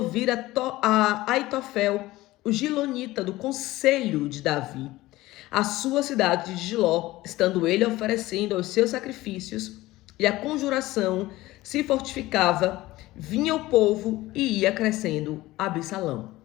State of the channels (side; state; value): right; quieter; 17.9 dB